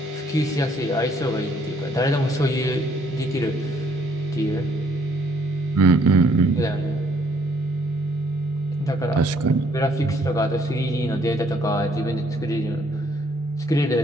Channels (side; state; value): both; normal; correlation 0.65